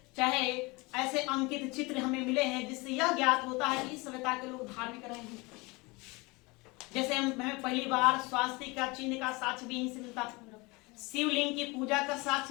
चाहे ऐसे अंकित चित्र हमें मिले हैं जिससे यह ज्ञात होता है कि इस सभ्यता के लोग धार्मिक रहे हैं। जैसे हमें पहली बार स्वास्तिक का चिन्ह का साक्ष्य भी यहीं से मिलता है, शिवलिंग की पूजा का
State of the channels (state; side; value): quieter; right; 25.2 dB